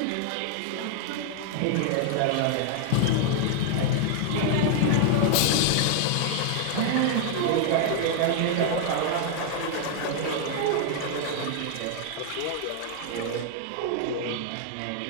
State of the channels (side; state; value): both; different; correlation 0.00